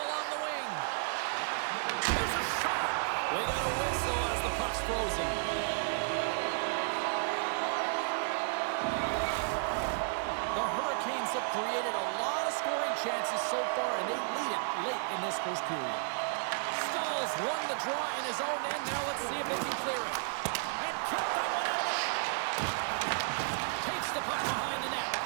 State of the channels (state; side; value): silent; left; digital silence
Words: along the wing. Here's a shot. We got a whistle as the puck's frozen. The Hurricanes have created a lot of scoring chances so far, and they lead it late in this first period. Stahls won the draw in his own end. Now let's see if they can clear it. And kept that one out of the net. Takes the puck behind the net.